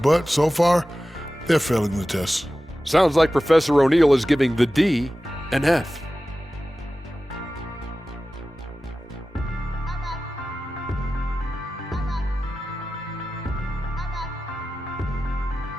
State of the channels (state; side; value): normal; both; correlation 0.95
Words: so far, they're failing the test. Sounds like Professor O'Neal is giving the D an F.